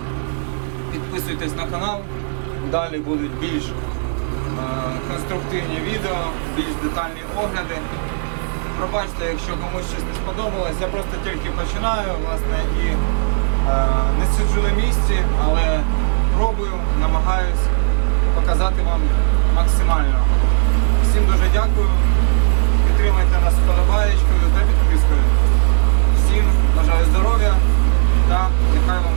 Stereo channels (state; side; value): silent; left; 68 dB below the other